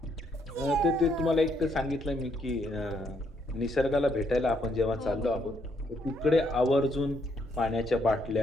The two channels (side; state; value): both; normal; correlation 0.72